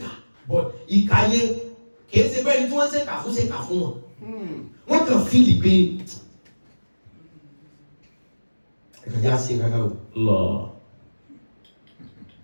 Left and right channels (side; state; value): both; inverted; correlation -1.00